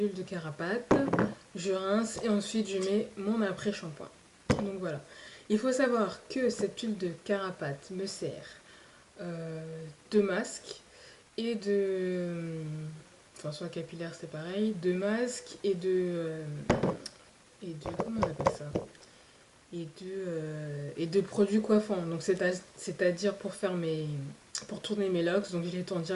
de carapate. Je rince et ensuite je mets mon après-shampoing. Donc voilà. Il faut savoir que cette huile de carapate me sert de masque et enfin, soit capillaire, c'est pareil. De masque comment on appelle ça? Et de produits coiffants. Donc c'est-à-dire pour tourner mes locks. Donc je les tourne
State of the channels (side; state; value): both; identical; correlation 1.00